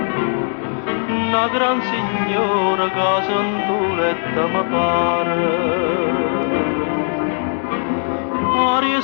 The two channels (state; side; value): silent; right; digital silence